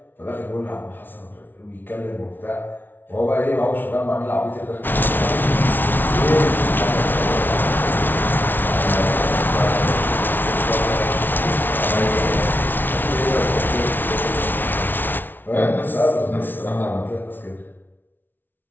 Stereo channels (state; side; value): late; right; 0.093 ms